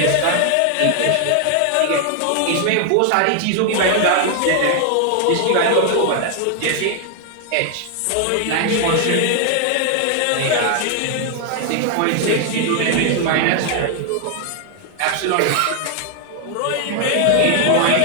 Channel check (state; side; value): different; both; correlation 0.00